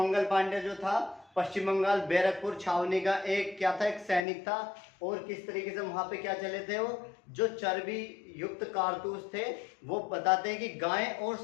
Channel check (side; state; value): right; drops out; at 4.2 s